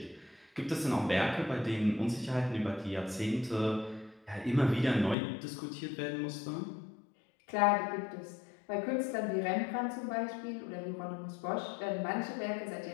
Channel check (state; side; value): drops out; right; at 5.2 s